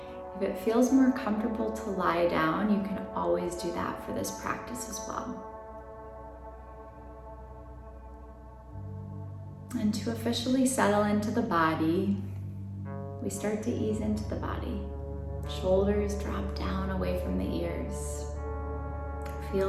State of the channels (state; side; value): identical; both; correlation 1.00